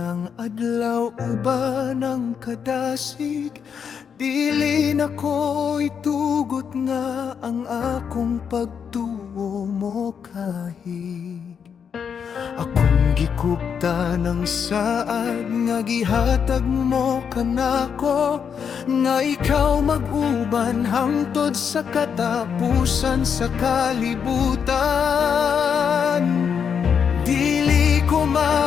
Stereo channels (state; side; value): quieter; right; 7.1 dB